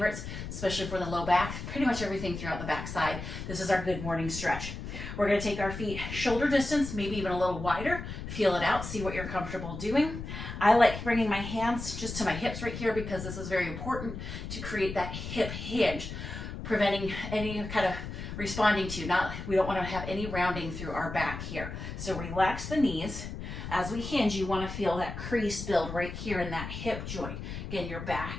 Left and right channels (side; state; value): left; noise; rumble, 8 dB below the sound